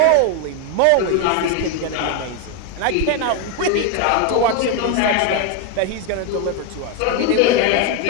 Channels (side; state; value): both; different; correlation 0.01